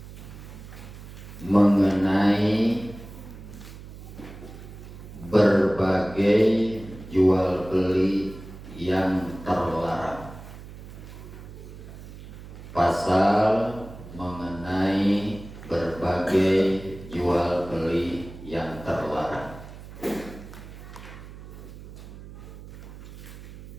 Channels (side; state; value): right; noise; hum, 15 dB below the sound